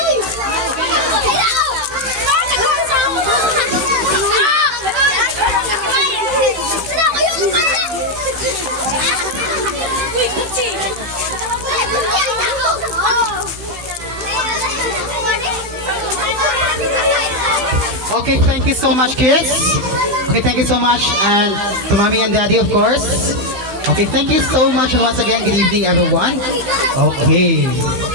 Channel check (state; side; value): late; left; 15 ms